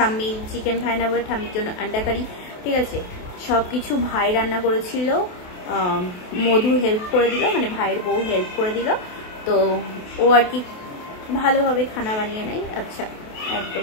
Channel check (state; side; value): late; right; 28 ms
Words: চিকেন খায় না বলে ঠাম্মির জন্য আন্ডা কারি। ঠিক আছে, সব কিছু ভাই রান্না করেছিল, মধু হেল্প করে দিল, মানে ভাইয়ের বউ হেল্প করে দিল। তো ও আর কি ভালোভাবে খানা বানিয়ে নেয়। আচ্ছা,